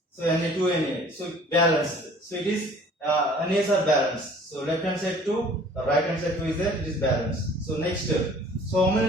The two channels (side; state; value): both; normal; correlation 0.51